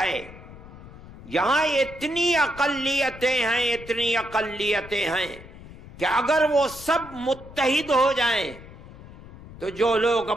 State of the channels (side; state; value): left; noise; rumble, 17 dB below the sound